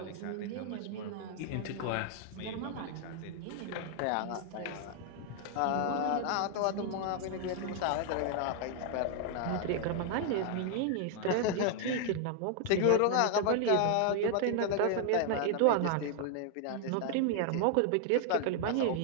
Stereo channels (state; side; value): different; both; correlation 0.00